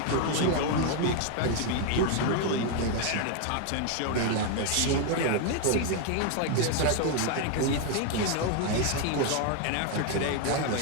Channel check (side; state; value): both; different; correlation 0.00